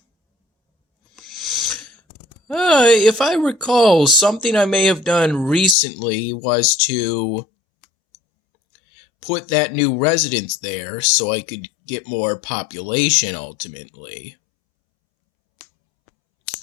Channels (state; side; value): drops out; right; at 5.8 s